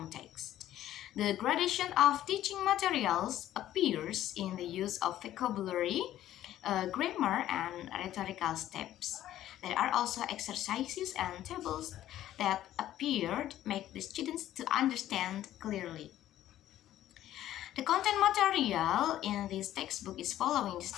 text. The gradation of teaching materials appears in the use of vocabulary, grammar, and rhetorical steps. There are also exercises and tables that appeared make the students to understand clearly. The content material in this textbook is following the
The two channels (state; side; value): quieter; right; 12.9 dB